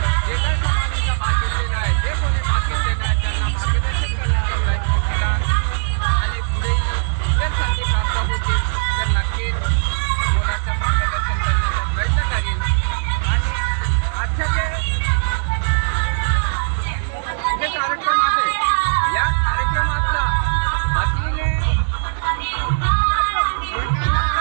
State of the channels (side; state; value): left; silent; 66 dB below the other